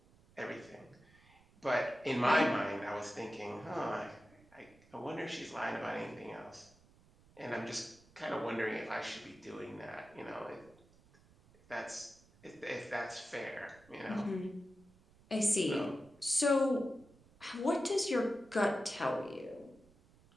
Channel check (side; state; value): right; noise; rumble, 27 dB below the sound